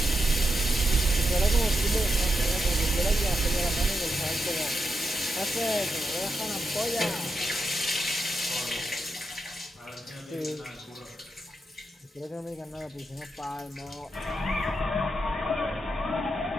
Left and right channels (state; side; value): normal; both; correlation 0.85